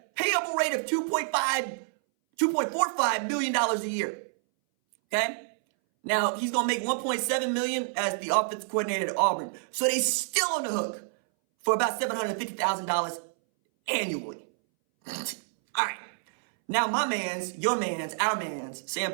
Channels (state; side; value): silent; left; 59 dB below the other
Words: payable rate of $2.45 million a year. Okay? Now, he's going to make $1.7 million as the offensive coordinator at Auburn. So they still on the hook for about $750,000 annually. All right. Now, my mans, your mans, our mans, Sam